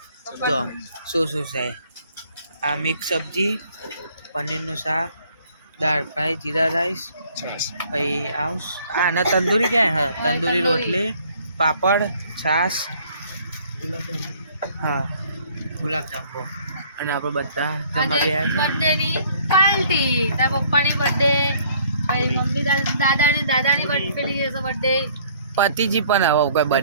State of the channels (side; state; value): both; inverted; correlation -0.59